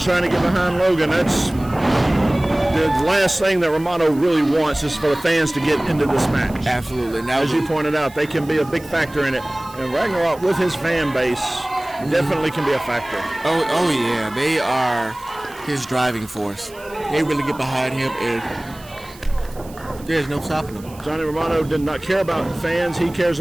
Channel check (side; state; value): right; noise; hiss, 22 dB below the sound